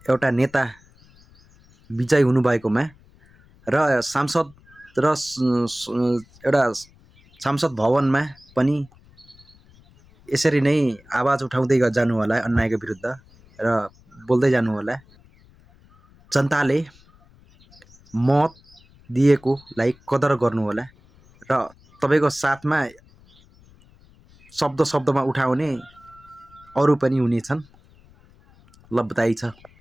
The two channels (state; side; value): noise; left; rumble, 28 dB below the sound